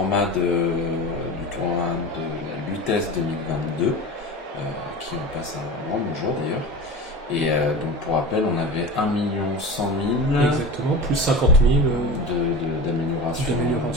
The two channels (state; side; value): normal; both; correlation 0.31